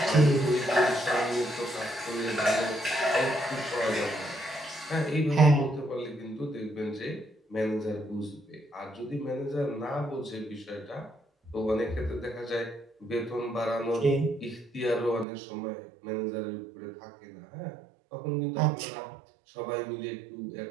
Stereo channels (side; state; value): left; drops out; at 15.2 s